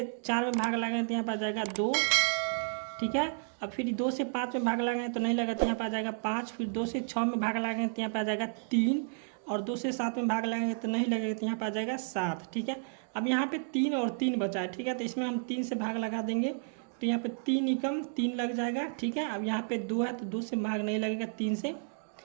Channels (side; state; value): left; silent; digital silence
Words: 4 में भाग लगाएंगे तो यहाँ पर आ जाएगा 2। ठीक है, अब फिर 2 से 5 में भाग लगाएंगे तो नहीं लगा तो यहाँ पर आ जाएगा 5। फिर 2 से 6 में भाग लगाएंगे तो यहाँ पर आ जाएगा 3, और 2 से 7 में भाग लगाएंगे तो नहीं लगेगा तो यहाँ पर आ जाएगा 7। ठीक है, अब यहाँ पे 3 और 3 बचा है। ठीक है, तो इसमें हम 3 से भाग लगा देंगे तो यहाँ पे 3 एकम 3 लग जाएगा। ठीक है, अब यहाँ पे 2 है तो 2 से भाग नहीं लगेगा 3 से।